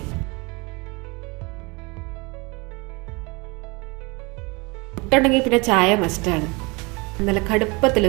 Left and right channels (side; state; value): left; quieter; 27.7 dB